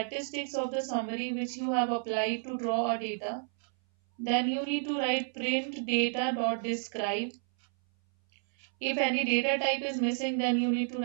of the summary which you have applied to draw a data, then you need to write print data.describe. If any data type is missing, then you need to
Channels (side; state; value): left; silent; 57 dB below the other